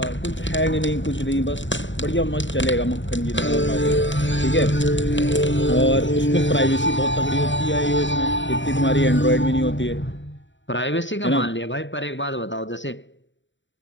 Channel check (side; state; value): right; late; 0.54 ms